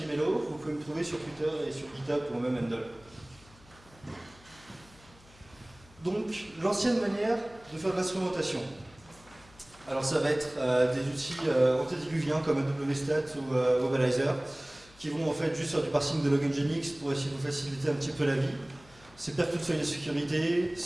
vous pouvez me trouver sur Twitter et sur GitHub ou même Handle. Donc, l'ancienne manière de faire de l'instrumentation. Alors, ça va être des outils antédiluviens comme AWStat ou Wobalizer qui vont en fait juste faire du parsing de log Nginx pour essayer de vous faciliter un petit peu la vie. C'est perdre toute feuille de sécurité,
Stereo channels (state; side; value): noise; left; hum, 25 dB below the sound